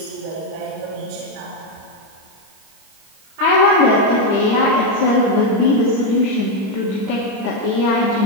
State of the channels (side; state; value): left; late; 25 ms